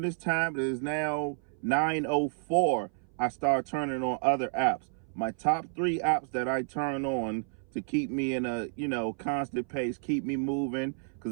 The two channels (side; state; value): left; silent; 57 dB below the other